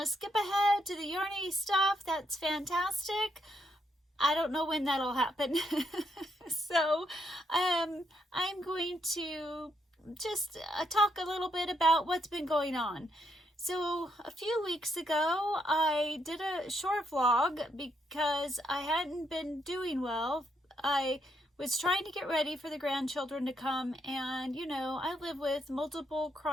to skip ahead to the yarny stuff, that's fantastic. I don't know when that'll happen. So I'm going to just talk a little bit about what's been going on. So a few weeks ago, I did a short vlog because I hadn't been doing well. I was trying to get ready for the grandchildren to come, and you know, I live with multiple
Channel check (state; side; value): normal; both; correlation 0.76